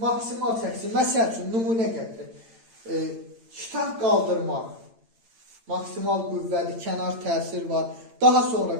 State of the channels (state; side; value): late; left; 8.8 ms